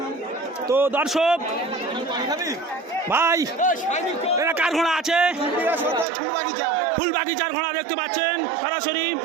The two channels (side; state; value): left; drops out; at 6.1 s